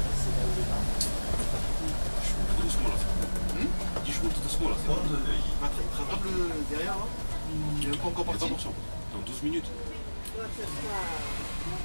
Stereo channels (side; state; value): both; inverted; correlation -1.00